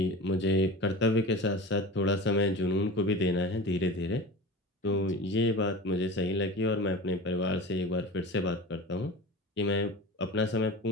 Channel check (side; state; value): both; normal; correlation 0.32